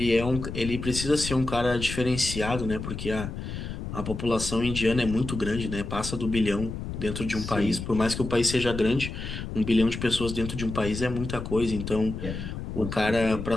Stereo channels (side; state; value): left; noise; rumble, 7 dB below the sound